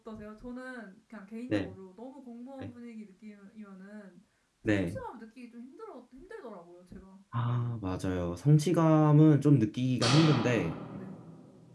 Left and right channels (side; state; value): both; identical; correlation 1.00